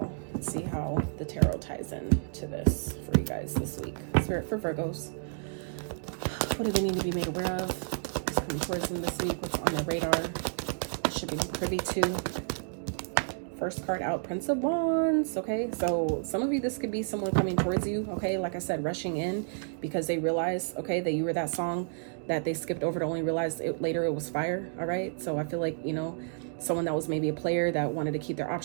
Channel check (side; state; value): left; silent; digital silence